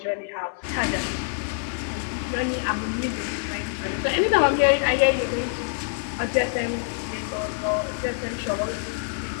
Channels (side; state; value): right; silent; 60 dB below the other